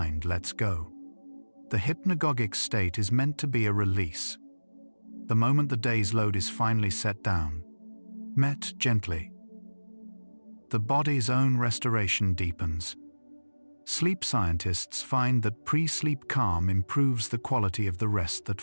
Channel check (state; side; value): inverted; both; correlation -1.00